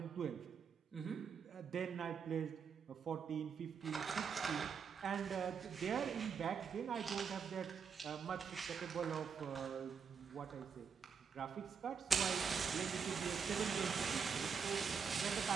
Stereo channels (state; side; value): quieter; left; 6.3 dB